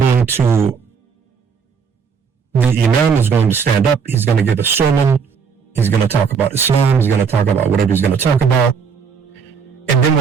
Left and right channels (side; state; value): left; quieter; 6.0 dB